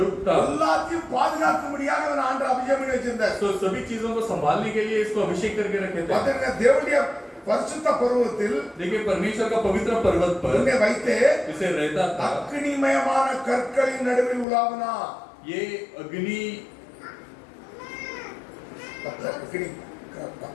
था। எல்லாத்தையும் பாதுகாக்கும்படியாக அவன் ஆண்டவர் அபிஷேகம் பண்ணி வச்சிருந்தார். வச்சிருந்தார். तो सभी चीजों को संभालने के लिए इसको अभिषेक करके रखे थे. பாத்தீங்கன்னா தேவனுடைய பரிசுத்த பர்வதத்தில் देखिए परमेश्वर का पवित्र पर्वत पर உன்னை வைத்து इसे रहता था. அக்னிமயமான கற்களின் நடுவில் உலாவினா. ये अग्नि பத்தர்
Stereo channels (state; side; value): drops out; right; at 14.5 s